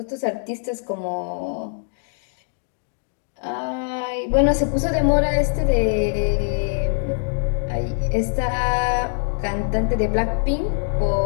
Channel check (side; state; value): right; silent; digital silence